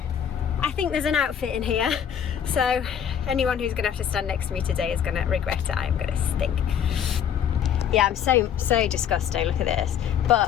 I think there's an outfit in here. So anyone who's gonna have to stand next to me today is gonna regret it. I am gonna stink. Yeah, I'm so disgusting, look at this.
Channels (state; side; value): quieter; right; 8.7 dB